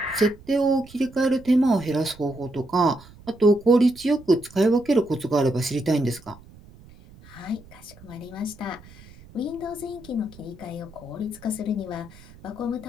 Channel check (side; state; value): right; noise; rumble, 22 dB below the sound